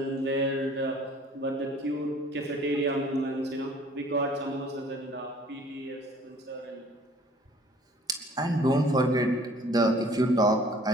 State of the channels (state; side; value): normal; both; correlation 0.54